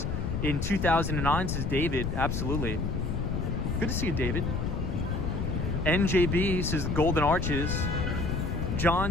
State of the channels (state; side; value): noise; left; rumble, 1 dB below the sound